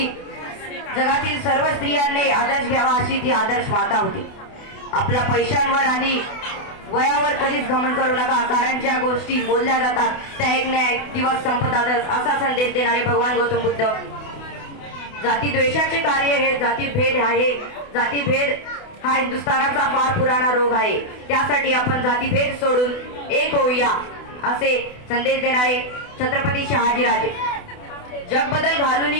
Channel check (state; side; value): late; right; 28 ms